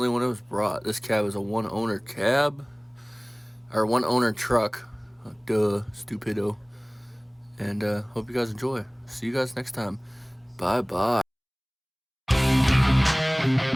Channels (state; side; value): identical; both; correlation 1.00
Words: when it was brought, this cab is a one-owner cab, or one-owner truck. Duh, stupido. And hope you guys enjoy. See you guys next time. Bye bye.